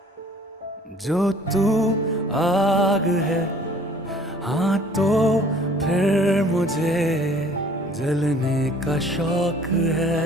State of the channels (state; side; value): normal; both; correlation 0.53